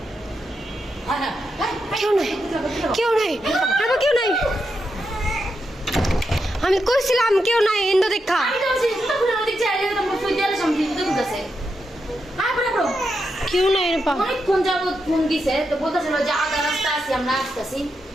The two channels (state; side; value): normal; both; correlation 0.85